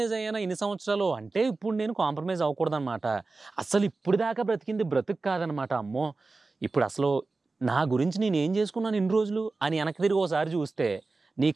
అయ్యానా ఇన్ని సంవత్సరాలు అంటే ఇప్పుడు నేను కాంప్రమైజ్ అవ్వకూడదన్నమాట. అసలు ఇప్పుడు దాకా బ్రతికింది బ్రతుకు కాదనమాట. అమ్మో ఇప్పుడు అసలు నా గురించి నేను ఏం చేసుకున్నాను ఇన్ని రోజులు అని వెనక్కి తిరిగి ఒకసారి చూస్తే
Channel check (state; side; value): quieter; left; 3.7 dB